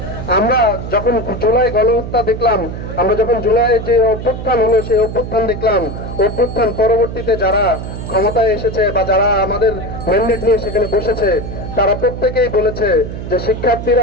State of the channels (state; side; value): noise; right; hum, 8 dB below the sound